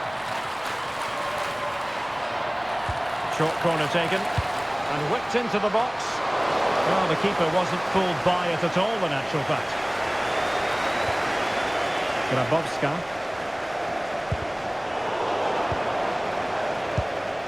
Short corner taken and whipped into the box. Well, the keeper wasn't fooled by it at all, in actual fact. Grabowska.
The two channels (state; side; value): noise; right; rumble, 28 dB below the sound